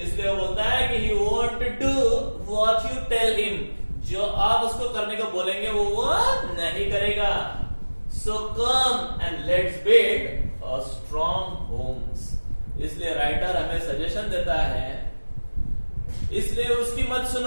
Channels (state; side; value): inverted; both; correlation -1.00